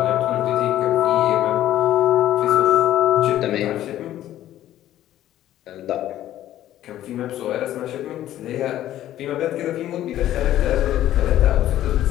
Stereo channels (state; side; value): quieter; right; 12.9 dB